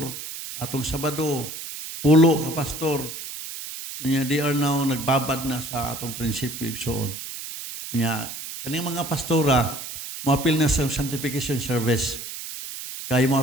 Atong Sabado 10 ka pastor. Kanya they are now nagbabad na sa atong prinsipyo igsoon. Kanya kaning mga pastora moapil na sa sanctification service. Kaya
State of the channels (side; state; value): right; noise; hiss, 9 dB below the sound